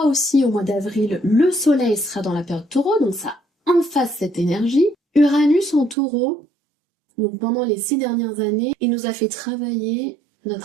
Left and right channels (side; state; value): left; drops out; at 6.0 s